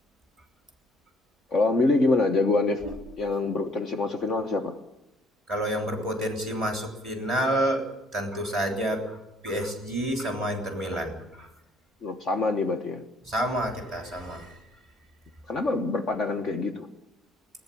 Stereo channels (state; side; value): normal; both; correlation 0.62